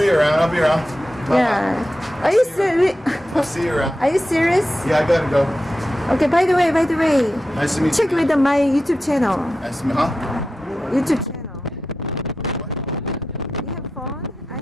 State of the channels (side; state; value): both; normal; correlation 0.91